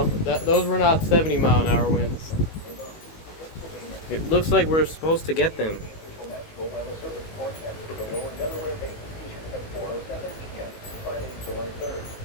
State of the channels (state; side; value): late; right; 18 ms